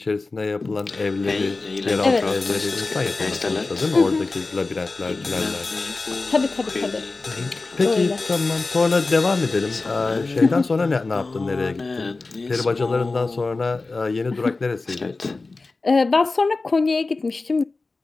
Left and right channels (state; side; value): quieter; right; 3.6 dB